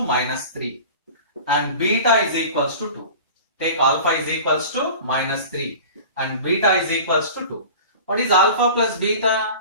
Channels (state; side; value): inverted; both; correlation -0.38